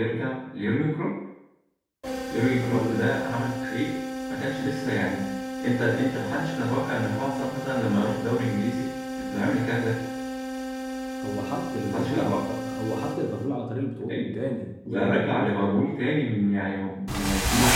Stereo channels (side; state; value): both; identical; correlation 1.00